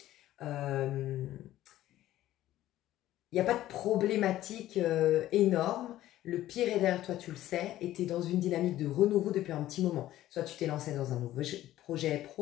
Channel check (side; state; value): right; quieter; 14.2 dB